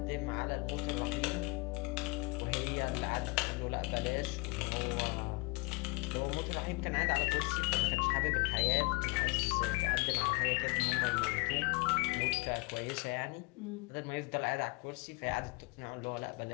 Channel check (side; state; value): right; quieter; 27.9 dB